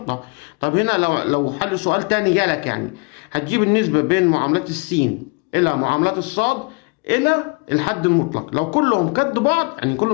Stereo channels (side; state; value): right; quieter; 30.2 dB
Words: طب هنا لو حل سؤال تاني جالك، يعني هتجيب النسبه بين معاملات السين الى معاملات الصاد الى الحد المطلق، لو كلهم قد بعض يعني